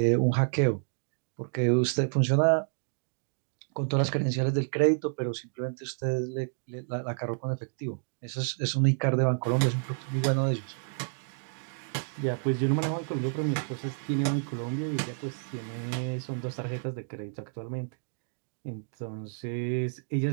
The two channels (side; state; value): left; silent; digital silence